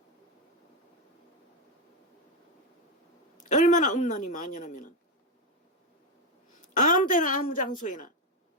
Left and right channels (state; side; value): normal; both; correlation 0.07